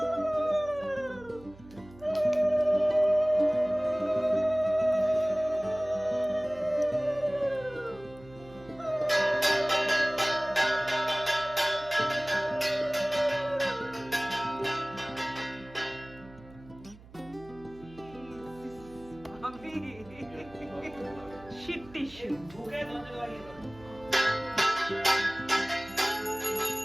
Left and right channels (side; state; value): right; noise; hum, 21 dB below the sound